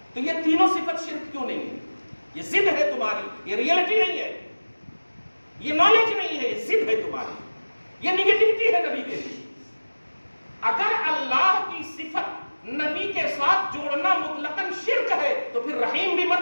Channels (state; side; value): inverted; both; correlation -1.00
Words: تو یہ تینوں صفت شرک کیوں نہیں ہے؟ یہ ضد ہے تمہاری، یہ ریئلٹی نہیں ہے، یہ نالج نہیں ہے، یہ ضد ہے تمہاری، یہ نیگیٹیوٹی ہے نبی کے لیے۔ اگر اللہ کی صفت نبی کے ساتھ جوڑنا مطلقاً شرک ہے تو پھر رحیم بھی